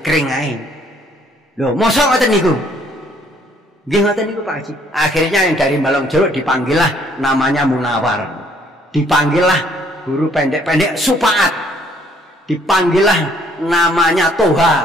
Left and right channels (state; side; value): normal; both; correlation 0.64